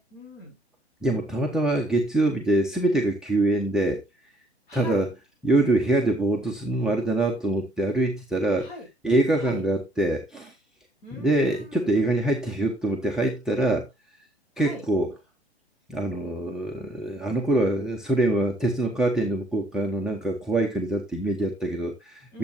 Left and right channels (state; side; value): normal; both; correlation 0.65